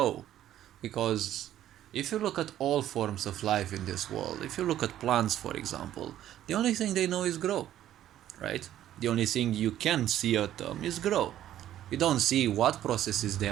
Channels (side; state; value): left; quieter; 12.2 dB